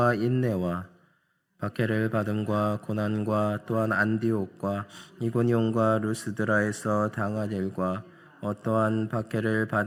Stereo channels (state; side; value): identical; both; correlation 1.00